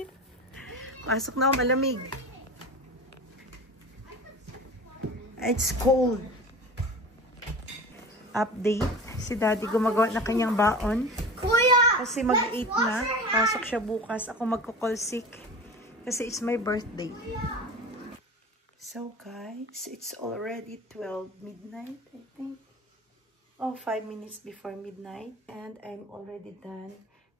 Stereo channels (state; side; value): normal; both; correlation 0.34